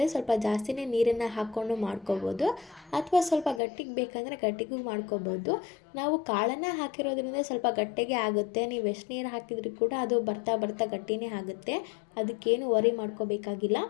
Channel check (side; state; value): right; drops out; at 3.6 s